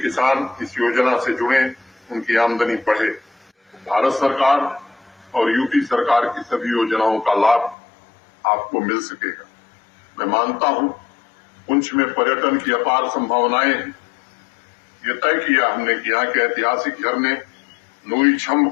किसान इस योजना से जुड़े, उनकी आमदनी बढ़े। भारत सरकार और यूपी सरकार की सभी योजनाओं का लाभ आपको मिल सकेगा। मैं मानता हूं पुंछ में पर्यटन की अपार संभावनाएं हैं। ये तय किया हमने कि यहाँ के ऐतिहासिक झरने नूरी छम्ब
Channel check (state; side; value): drops out; right; at 7.8 s